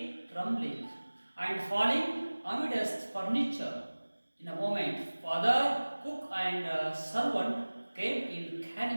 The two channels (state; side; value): inverted; both; correlation -1.00